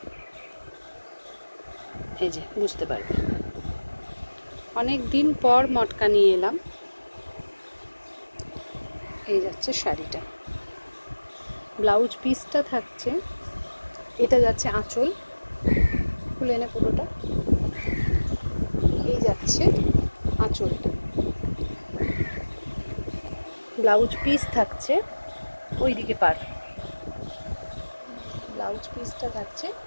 এই যে বুঝতে পারবে। অনেক দিন পর মটকা নিয়ে এলাম। এই যাচ্ছে শাড়িটা, ব্লাউজ পিসটা থাকছে, এটা যাচ্ছে আঁচল, খুলে নে পুরোটা। এই যাচ্ছে আঁচলটা, ব্লাউজ পিস থাকছে ওইদিকে পার, ব্লাউজ পিসটা থাকছে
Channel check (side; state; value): both; inverted; correlation -1.00